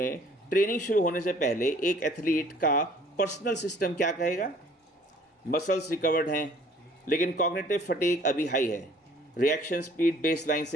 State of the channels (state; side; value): normal; both; correlation 0.56